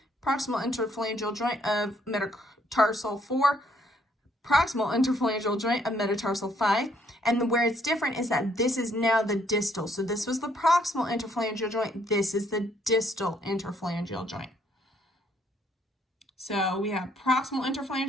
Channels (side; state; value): both; normal; correlation 0.68